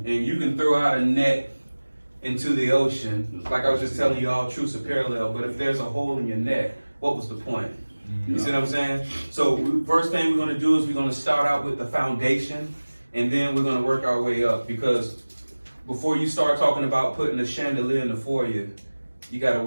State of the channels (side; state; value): both; inverted; correlation -1.00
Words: you can throw out a net into the ocean, like I was just telling you all, truths are parallel, but if there's a hole in your net, what was the point? You see what I'm saying? So first thing we're going to do is we're going to start out with the foundation, and then we're going to work our way up, because before you start talking about putting a chandelier in the foyer, you got to